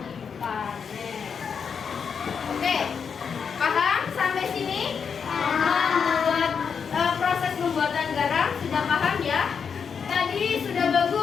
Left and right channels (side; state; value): right; quieter; 6.5 dB